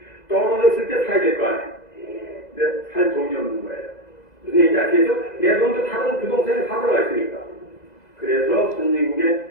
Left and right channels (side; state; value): right; late; 2.0 ms